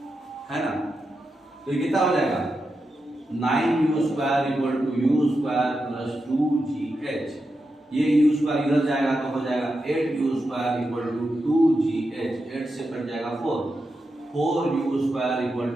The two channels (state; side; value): normal; both; correlation 0.88